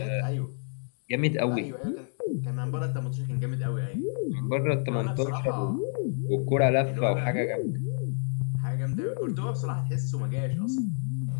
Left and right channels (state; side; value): silent; right; 59 dB below the other